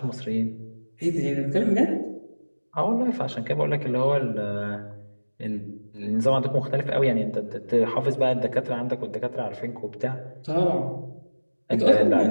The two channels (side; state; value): both; inverted; correlation -1.00